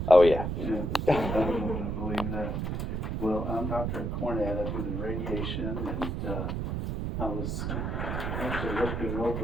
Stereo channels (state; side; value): noise; right; rumble, 2 dB below the sound